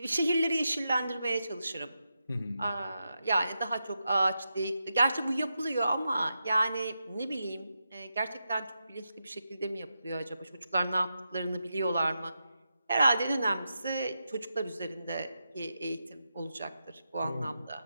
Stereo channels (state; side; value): inverted; both; correlation -0.88